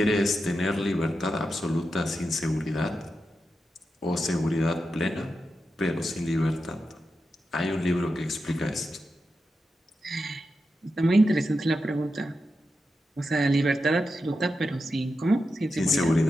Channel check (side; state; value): both; normal; correlation 0.89